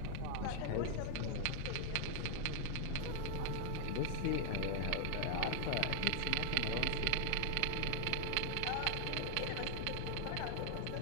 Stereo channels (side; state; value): both; different; correlation 0.00